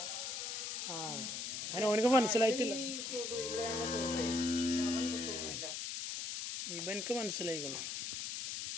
അതിന് ഓനക്ക് മനസ്സിലായിട്ടില്ല. ഇവനക്ക് മനസ്സിലായിക്കണം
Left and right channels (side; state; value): left; noise; hiss, 4 dB below the sound